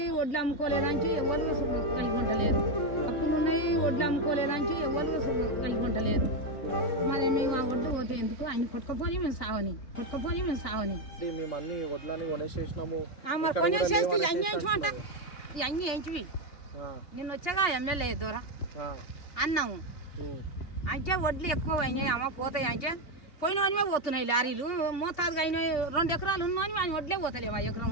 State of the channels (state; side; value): late; right; 3.4 ms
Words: వడ్లు అమ్ముకోలేదాంచి ఎవరు కలిగి ఉండలేదు. అప్పులు ఉన్నాయి, వడ్లు అమ్ముకోలేదాంచి ఎవరు కలిగి ఉండలేదు. మరి మేము ఆ వడ్లు పోతే ఎందుకు ఆయన కొట్టుకపోయి మేము సావని మేము అన్ని వడ్లని కొనేసేసినాము. మరి కొనేసేసి అన్ని వేయించమంట అన్ని వేయించి నిన్న వచ్చాగా ఎమ్మెల్యే దూర అన్నాము. అంటే వడ్లు ఎక్కువ అయినాయి అమ్మ పోతాయి. అంటే పోయినవనివే పోతున్నాయి లారీలు. మోతాదుగా అయిన 2 ఎకరాలు ఉన్నాయని ఆయన వడ్లే పోతలేవు. 1 ఎకరం